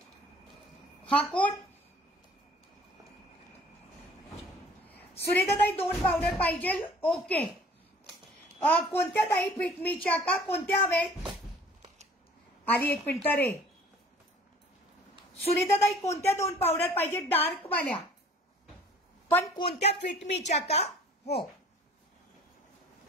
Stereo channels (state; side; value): normal; both; correlation 0.52